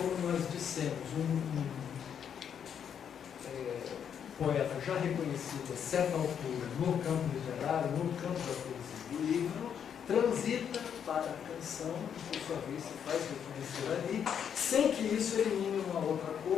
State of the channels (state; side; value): quieter; right; 8.2 dB